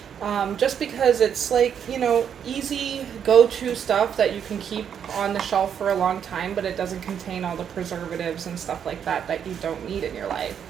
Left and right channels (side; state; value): left; quieter; 8.3 dB